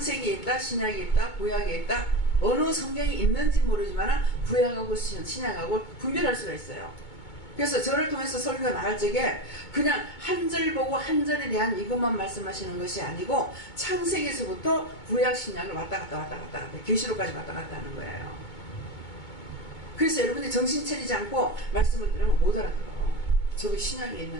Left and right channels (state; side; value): late; right; 2.2 ms